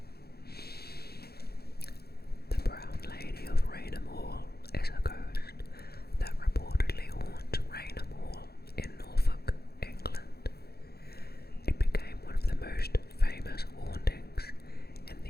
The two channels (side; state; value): right; late; 0.46 ms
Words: The Brown Lady of Raynham Hall is a ghost that reportedly haunts Raynham Hall in Norfolk, England. It became one of the most famous hauntings in